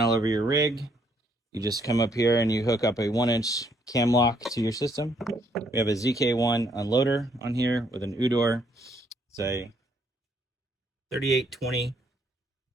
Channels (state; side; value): normal; both; correlation 0.69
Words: all over your rig, you just come up here and you hook up a 1-inch cam lock to your system. We have a ZK1 unloader on here with an Udor. It's a 3820